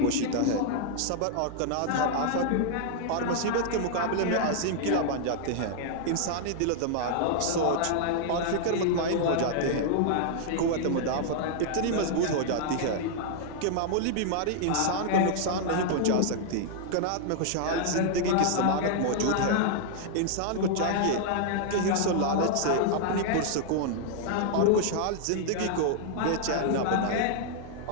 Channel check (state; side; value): different; both; correlation -0.01